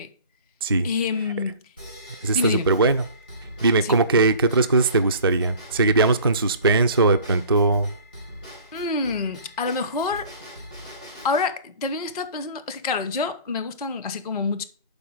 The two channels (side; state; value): both; inverted; correlation -0.45